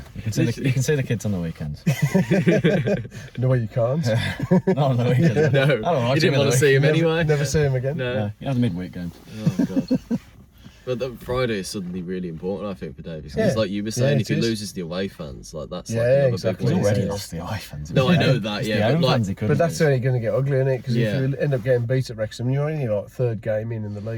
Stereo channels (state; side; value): identical; both; correlation 1.00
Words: you can see the kids on the weekends. No way you can't. Not on the weekends. No, you didn't want to see him anyway. Never see him again. No, you have the midweek games. Oh god. But the Friday is suddenly really important, I think, for Davies. Because, like you were saying, if he loses the away fans, like that's like another exactly. big He's win. already lost the away fans. No, I know that. But that's only going to get ugly, isn't it? Because if you end up getting beat at Wrexham, you're only like third game in the